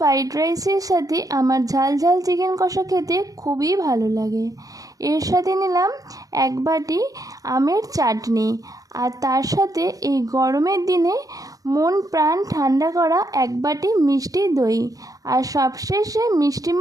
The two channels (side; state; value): left; late; 0.17 ms